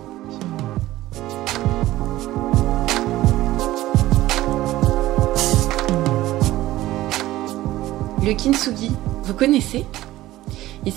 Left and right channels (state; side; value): quieter; left; 16.0 dB